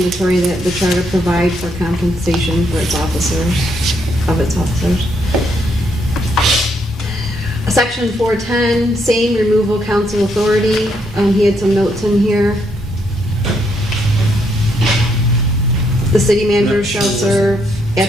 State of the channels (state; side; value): normal; both; correlation 0.74